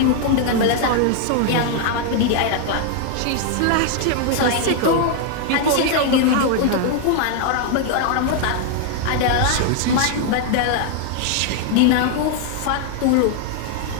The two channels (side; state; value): both; different; correlation 0.00